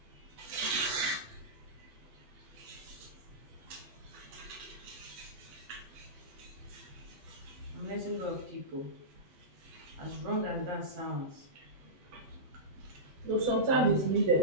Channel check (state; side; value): late; left; 8.4 ms